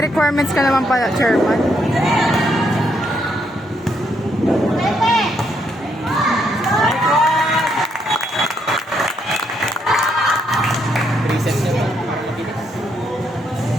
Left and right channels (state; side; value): normal; both; correlation 0.75